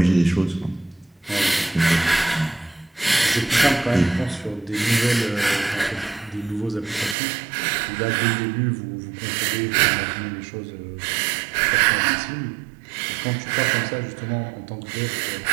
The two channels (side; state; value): left; drops out; at 7.2 s